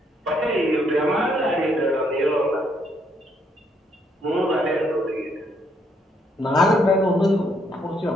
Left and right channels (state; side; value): normal; both; correlation 0.72